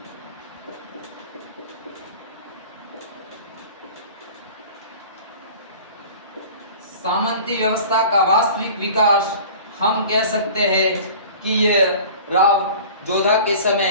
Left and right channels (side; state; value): both; inverted; correlation -0.42